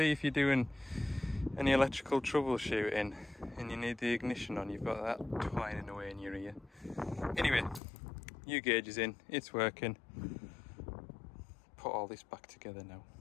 if you're doing any electrical troubleshooting and you need the ignition on, you've got that twining away in your ear. Anyway, new gauge is in, it's working. Put all this back together now.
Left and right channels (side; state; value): right; drops out; at 7.8 s